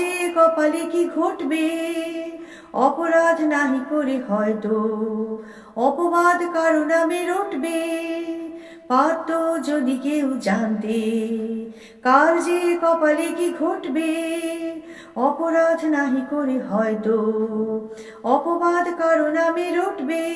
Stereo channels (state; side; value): identical; both; correlation 1.00